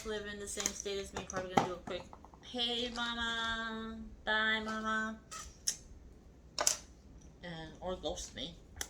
live in the same state as me, probably gonna do a quick, hey mama, bye mama, and or ghost me,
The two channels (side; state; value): both; identical; correlation 1.00